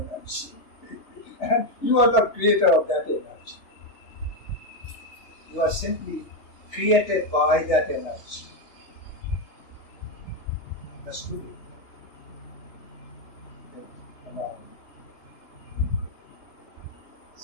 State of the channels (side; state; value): right; late; 3.3 ms